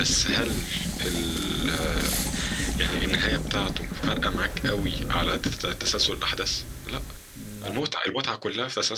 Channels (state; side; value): identical; both; correlation 1.00